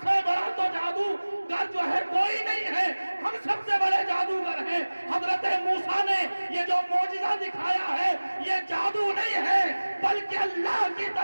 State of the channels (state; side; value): inverted; both; correlation -1.00